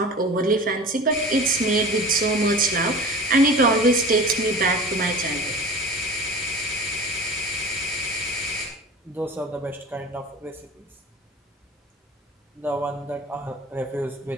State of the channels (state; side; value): normal; both; correlation 0.37